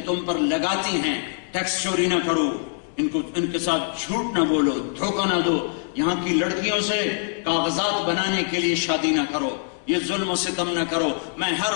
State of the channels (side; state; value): right; silent; digital silence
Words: تم پر لگاتی ہیں ٹیکس چوری نہ کرو، ان کے ساتھ جھوٹ نہ بولو، دھوکہ نہ دو، یہاں کی لڑکیوں سے کاغذات بنانے کے لیے شادی نہ کرو، یہ ظلم و ستم نہ کرو۔ میں ہر